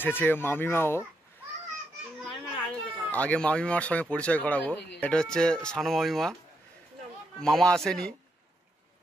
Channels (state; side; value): normal; both; correlation 0.81